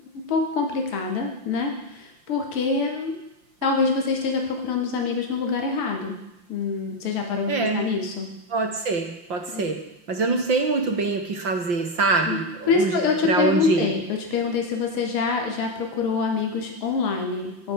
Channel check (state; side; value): late; left; 5.7 ms